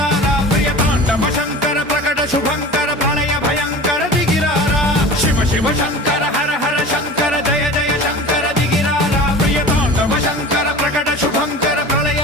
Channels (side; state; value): both; normal; correlation 0.37